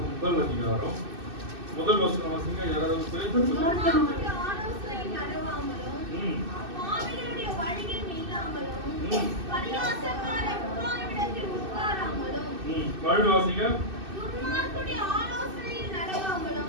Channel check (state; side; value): late; left; 2.6 ms